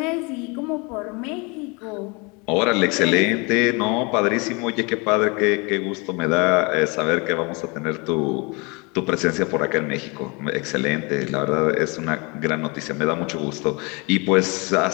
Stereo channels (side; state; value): right; quieter; 29.2 dB